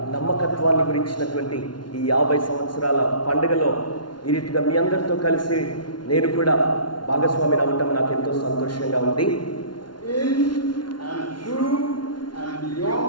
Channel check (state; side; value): late; right; 0.70 ms